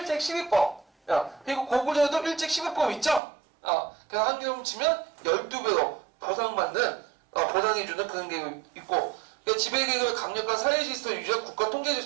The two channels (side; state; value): left; drops out; at 3.2 s